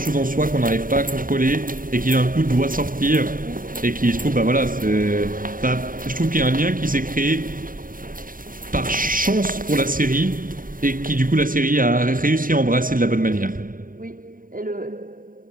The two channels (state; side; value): late; left; 0.40 ms